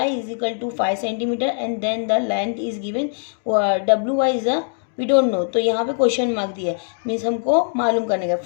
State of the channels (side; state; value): right; silent; digital silence